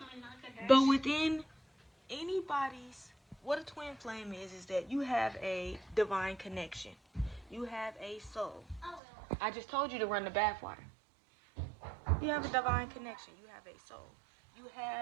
But within anybody's, what a twin flame is that you have a divine connection. You have a soul. I just told you to run the bathwater. You have a divine connection. You have a soul. You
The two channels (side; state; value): left; drops out; at 9.0 s